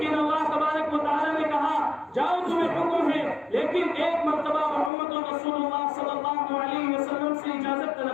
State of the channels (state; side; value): drops out; right; at 4.9 s